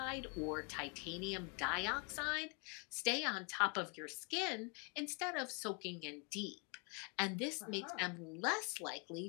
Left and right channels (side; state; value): right; quieter; 33.9 dB